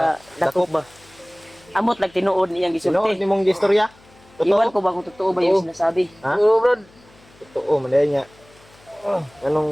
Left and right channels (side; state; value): left; noise; hum, 28 dB below the sound